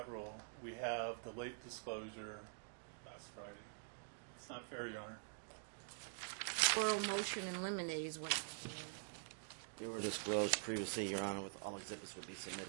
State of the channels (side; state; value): left; silent; digital silence